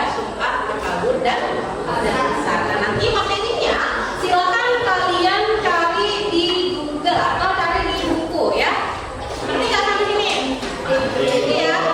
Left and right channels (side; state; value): both; identical; correlation 1.00